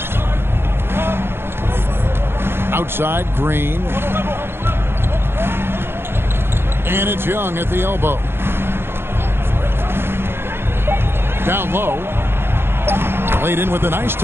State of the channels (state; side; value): late; left; 0.11 ms